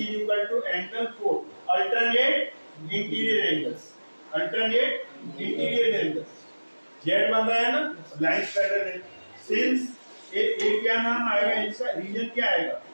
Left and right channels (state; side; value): inverted; both; correlation -1.00